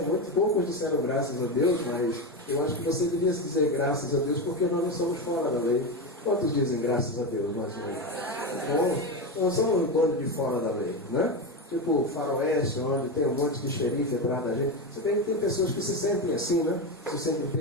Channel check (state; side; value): normal; both; correlation 0.15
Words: Muito poucos disseram graças a Deus, mas eu acho que você deveria dizer graças a Deus, porque nós não somos fora da lei. Quantos dizem graças a Deus, mais ou menos? Bom, nós somos um bando de fora da lei, né? Tipo o faroeste, onde tem um monte de xerife atrás da gente. Você vê que tem pessoas que se sentem assim, né? Se sentem